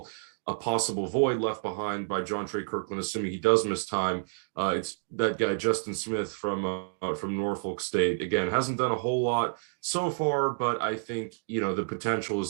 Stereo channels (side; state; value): left; silent; digital silence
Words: a possible void left behind by John Trey Kirkland, assuming he does miss time, it's that guy Justin Smith from Norfolk State. Again, hasn't done a whole lot so far, but I think the potential